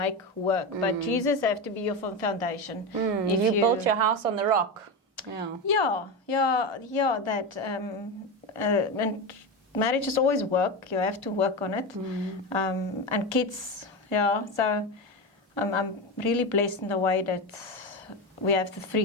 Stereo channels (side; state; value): both; normal; correlation 0.17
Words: work, but Jesus have to be your foundation. If you built your house on the rock, that and marriage is always work. You have to work on it, and kids. So I'm really blessed in the way that we have the